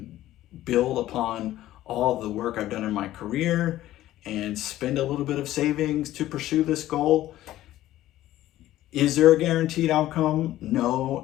build upon all of the work I've done in my career and spend a little bit of savings to pursue this goal. Is there a guaranteed outcome?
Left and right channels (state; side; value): quieter; right; 14.4 dB